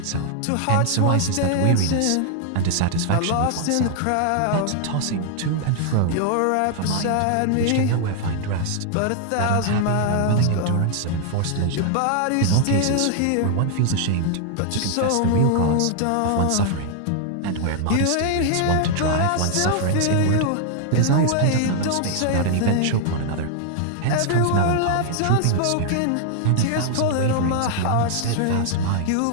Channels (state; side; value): different; both; correlation 0.00